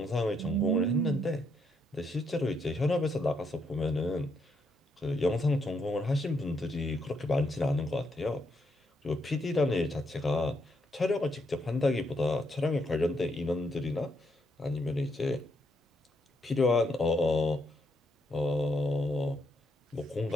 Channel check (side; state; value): both; normal; correlation 0.77